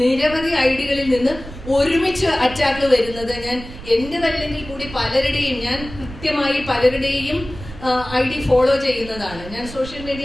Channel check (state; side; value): noise; right; rumble, 14 dB below the sound